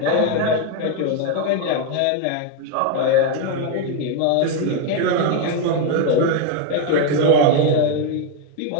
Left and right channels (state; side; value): different; both; correlation 0.01